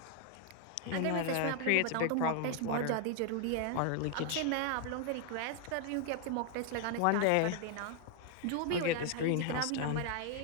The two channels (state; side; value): different; both; correlation 0.00